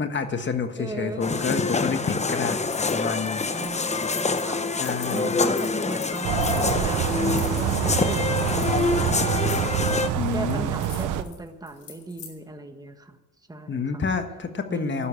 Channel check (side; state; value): both; normal; correlation 0.28